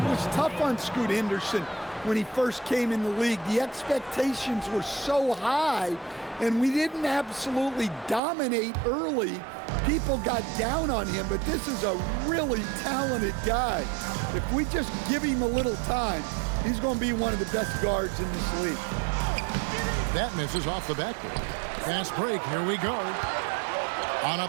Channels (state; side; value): drops out; left; at 8.2 s